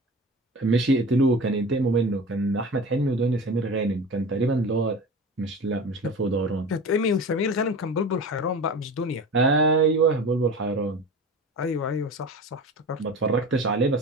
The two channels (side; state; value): both; normal; correlation 0.34